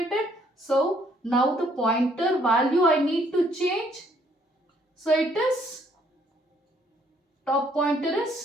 So now the pointer value I need to change. So it is top pointer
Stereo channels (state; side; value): normal; both; correlation 0.66